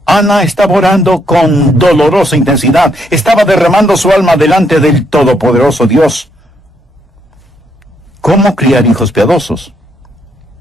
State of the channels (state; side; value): normal; both; correlation 0.74